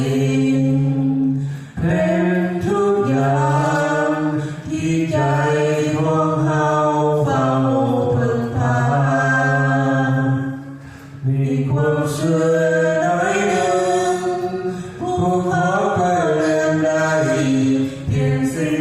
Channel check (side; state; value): both; identical; correlation 1.00